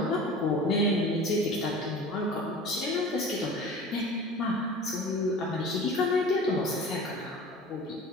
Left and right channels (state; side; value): normal; both; correlation 0.40